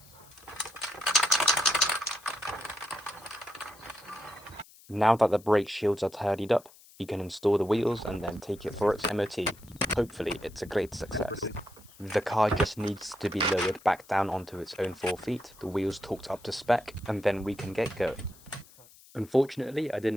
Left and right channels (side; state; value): left; noise; hiss, 24 dB below the sound